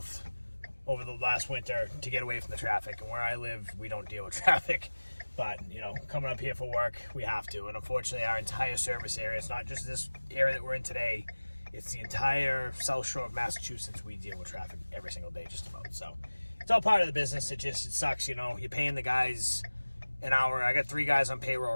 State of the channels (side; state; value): both; inverted; correlation -1.00